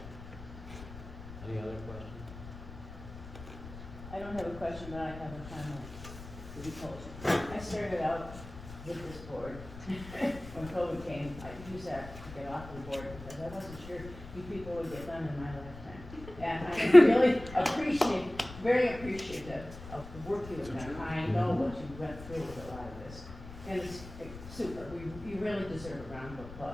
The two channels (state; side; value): noise; left; rumble, 14 dB below the sound